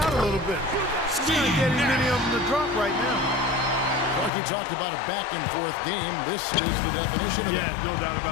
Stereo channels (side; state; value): right; drops out; at 4.3 s